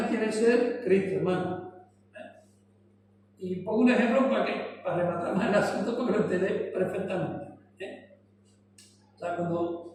tiene que ser Cristo, hermano. Y pongo un ejemplo para rematar más el asunto, porque lo entendé perfectamente. O sea,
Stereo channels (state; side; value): identical; both; correlation 1.00